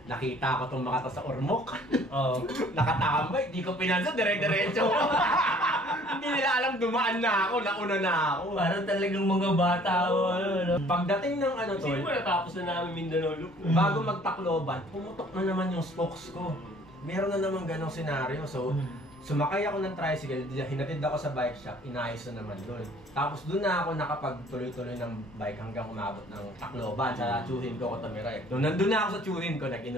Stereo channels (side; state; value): both; normal; correlation 0.55